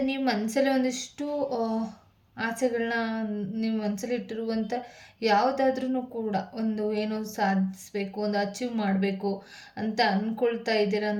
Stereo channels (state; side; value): identical; both; correlation 1.00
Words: ನೀವು ಮನಸ್ಸಲ್ಲಿ ಒಂದಿಷ್ಟು ಆಸೆಗಳನ್ನ ನೀವು ಮನಸ್ಸಲ್ಲಿ ಇಟ್ಟಿರುವಂಥ ಯಾವುದಾದ್ರೂ ಕೂಡ ಒಂದು ಏನೋ ಸಾಧಿಸಬೇಕು, ಒಂದು ಅಚೀವ್ ಮಾಡಬೇಕು ಅಂತ ಅಂದ್ಕೊಳ್ತಾ ಇದ್ದೀರಾ